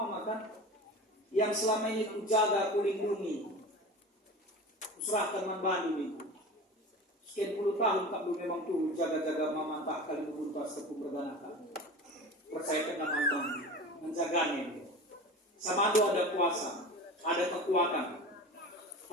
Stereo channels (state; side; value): normal; both; correlation 0.33